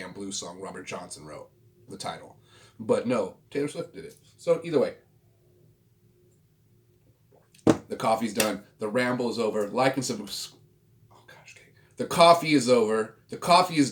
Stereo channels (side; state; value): both; identical; correlation 1.00